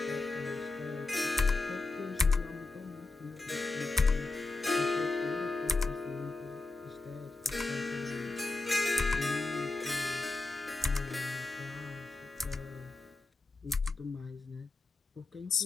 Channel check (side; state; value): right; quieter; 3.4 dB